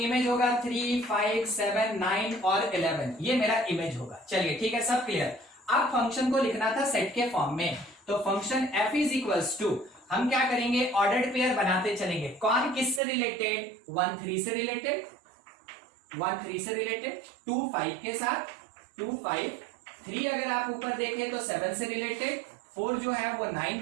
होगा 3, 5, 7, 9 और 11, ये मेरा इमेज होगा। चलिए ठीक है, सब क्लियर। अब फंक्शन को लिखना था सेट के फॉर्म में, तो function f is equals to, हम क्या करेंगे, ऑर्डर्ड पेयर बनाते चलेंगे। कौन किससे रिलेटेड? 1 3 से रिलेटेड, 1 3 से रिलेटेड, 2 5 के साथ, 2 5, 3 अगर आप ऊपर देखें तो 7 से रिलेटेड, 4 जो है वो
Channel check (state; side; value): drops out; left; at 13.0 s